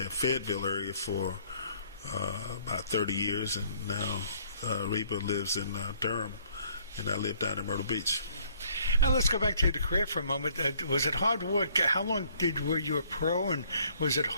Fayetteville area for about 30 years, and now Reba lives in Durham, and I live down in Myrtle Beach. Now let's go back to the career for a moment. Was it hard work? How long were you a pro, and was it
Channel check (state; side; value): inverted; both; correlation -0.61